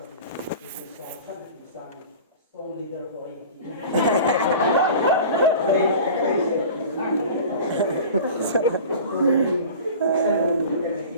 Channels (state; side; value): inverted; both; correlation -0.38